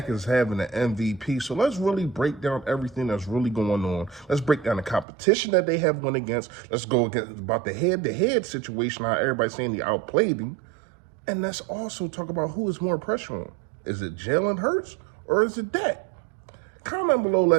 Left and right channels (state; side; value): drops out; left; at 5.1 s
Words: is having an MVP. So let's really break down everything that's really going on. Let's break down the competition that they have won against. Let's go against about the head-to-head situation, how everybody's saying they outplayed him. And let's also talk about who is more pressure on. Is it Jalen Hurts or is it Dak? Comment below,